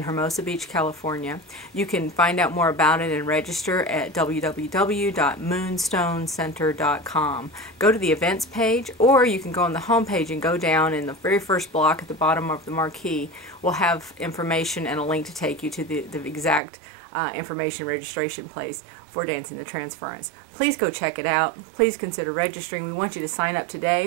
Hermosa Beach, California. You can find out more about it and register at www.moonstonecenter.com. Go to the events page, or you can go on the home page and go down in the very first block at the bottom of the marquee. We'll have information and a link to take you to the exact information registration place for Dancing the Transference. Please go check it out. Please consider registering. We want you to sign up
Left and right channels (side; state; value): left; drops out; at 16.6 s